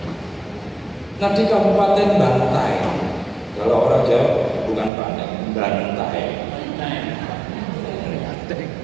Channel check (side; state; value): left; drops out; at 4.9 s